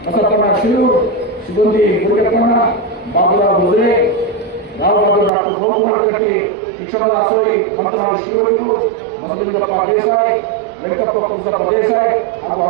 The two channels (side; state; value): left; drops out; at 5.3 s